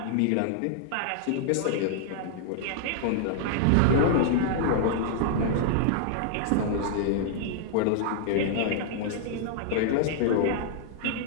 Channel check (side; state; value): both; different; correlation -0.01